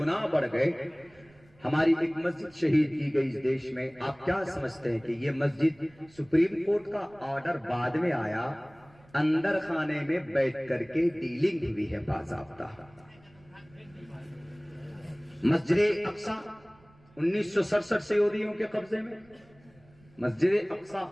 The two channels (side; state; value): right; noise; rumble, 28 dB below the sound